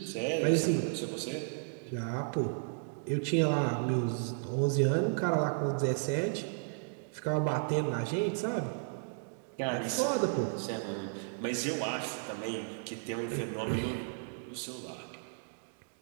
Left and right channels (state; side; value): silent; left; digital silence